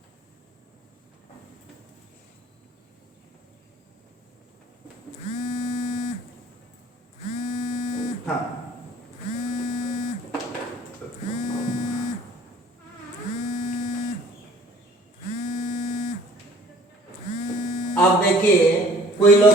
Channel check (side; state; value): both; normal; correlation 0.53